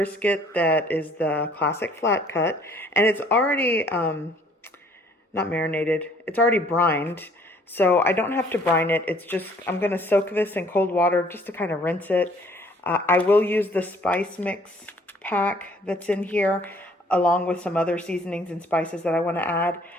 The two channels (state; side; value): normal; both; correlation 0.59